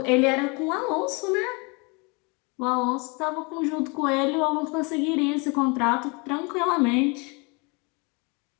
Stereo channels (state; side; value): quieter; right; 30.3 dB